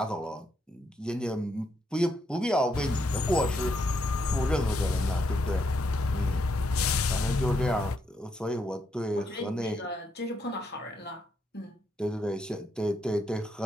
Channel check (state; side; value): normal; both; correlation 0.78